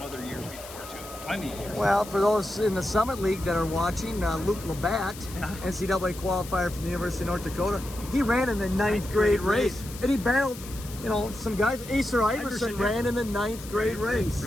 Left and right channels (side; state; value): left; noise; hiss, 15 dB below the sound